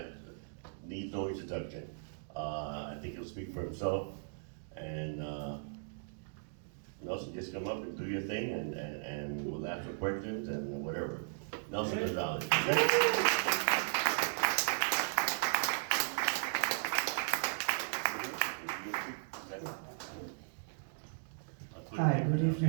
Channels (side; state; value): left; silent; digital silence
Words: needs no introduction. I think he'll speak for himself. And Nelson, just come up and do your thing, and we'll ask for questions and whatever. Nelson Gonzalez. Hi, good